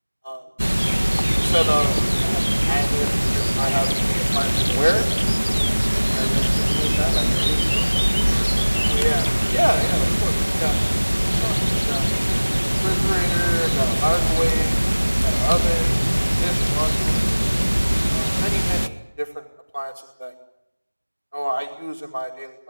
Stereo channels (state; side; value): inverted; both; correlation -1.00